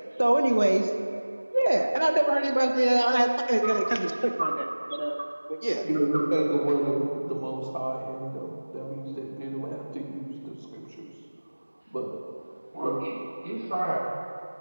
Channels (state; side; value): inverted; both; correlation -1.00